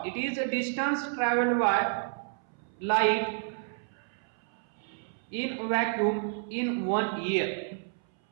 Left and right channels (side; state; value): left; silent; 58 dB below the other